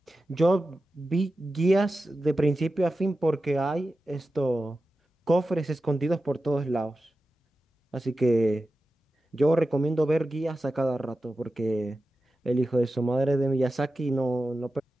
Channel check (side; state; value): both; normal; correlation 0.93